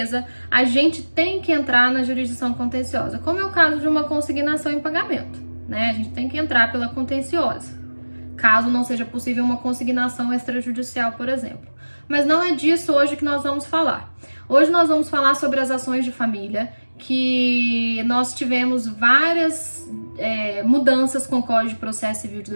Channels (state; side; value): inverted; both; correlation -1.00